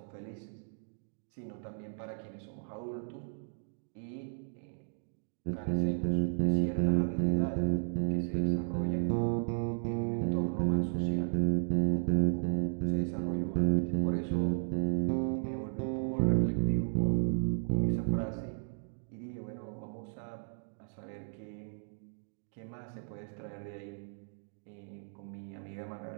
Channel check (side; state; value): left; silent; digital silence